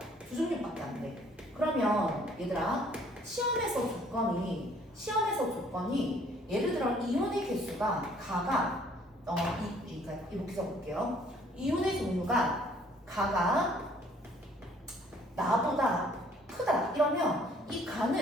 2종류밖에 안 돼. 그러면 얘들아 시험에서 조건이 예를 들어 이온의 개수가 가가 그러니까 이렇게 적을게요. 이온의 종류가 가가 나보다 크다 이러면 이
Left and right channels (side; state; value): both; normal; correlation 0.60